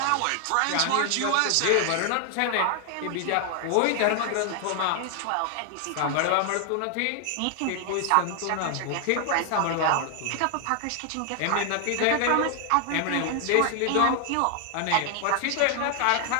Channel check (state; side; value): different; both; correlation 0.00